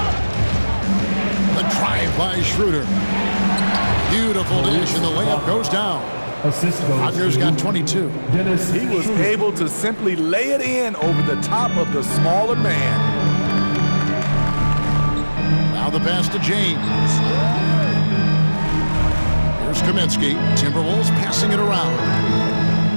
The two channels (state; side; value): inverted; both; correlation -1.00